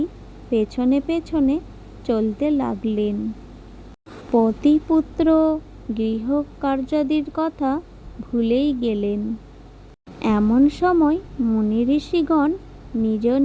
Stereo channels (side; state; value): both; identical; correlation 1.00